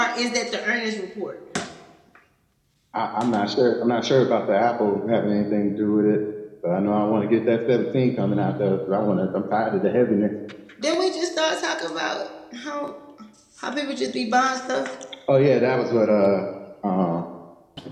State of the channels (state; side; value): identical; both; correlation 1.00